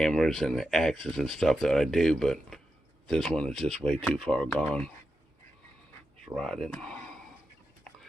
and the axes and stuff that I do, but this one is just way too far gone. It's rotted.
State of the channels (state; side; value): normal; both; correlation 0.88